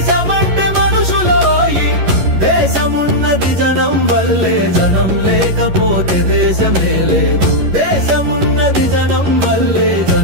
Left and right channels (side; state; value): left; late; 11 ms